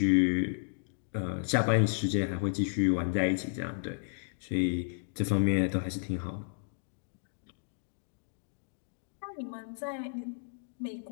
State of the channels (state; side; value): silent; right; digital silence